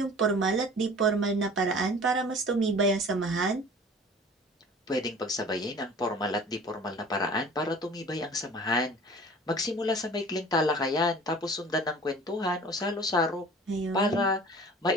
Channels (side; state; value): both; normal; correlation 0.44